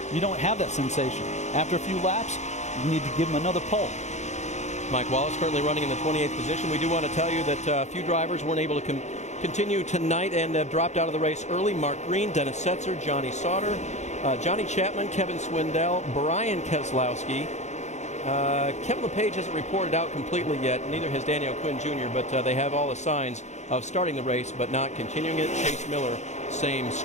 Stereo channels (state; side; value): late; right; 0.33 ms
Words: you don't have that sensation. After a few laps, you need to give him another pull. Mike Wallace currently running in the 28th position. We do want to tell you that a few drivers weren't able to continue tonight and have dropped out of the race early. Mark Green, Dennis Setzer, Johnny Sauter, Johnny Chapman, Kevin Swindell, Brian Keselowski. Kevin LePage hasn't reported out completely yet. Neither has Daniel Quinn Jr., but they have all the signs of starting the race but not continuing it. Chase Miller, same